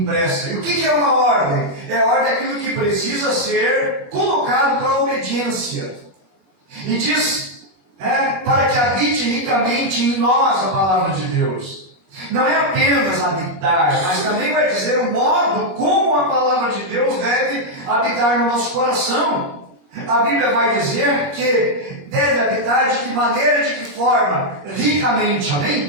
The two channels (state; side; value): late; left; 21 ms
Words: E o que é uma ordem? É a ordem daquilo que precisa ser colocado para a obediência. E diz, para que habite ricamente em nós a palavra de Deus. Não é apenas habitar, mas também vai dizer o modo como a palavra de Deus deve habitar no nosso coração. A Bíblia vai dizer que deve habitar de que maneira, de que forma? Ricamente,